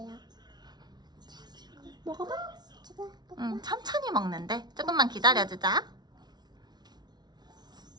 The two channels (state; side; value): late; left; 0.20 ms